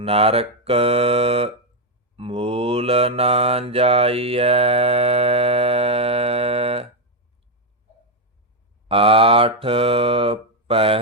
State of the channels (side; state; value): both; normal; correlation 0.04